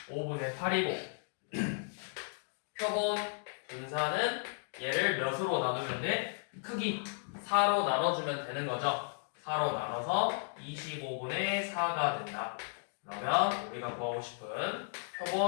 5분의 8이고 표본 분산은 얘를 몇으로 나누면 돼? 크기 4로 나눠주면 되는 거죠. 4로 나눠서 25분의 4가 된다. 그러면 우리가 구하고 싶은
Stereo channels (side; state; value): right; silent; digital silence